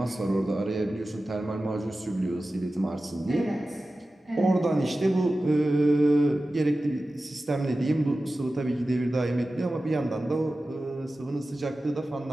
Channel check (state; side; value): normal; both; correlation 0.95